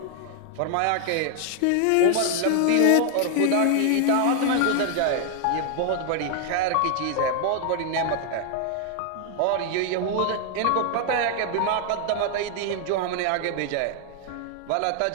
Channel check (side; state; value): both; different; correlation 0.00